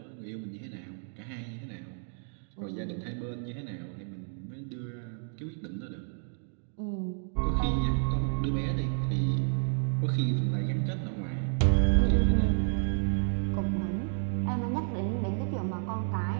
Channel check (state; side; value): silent; left; 57 dB below the other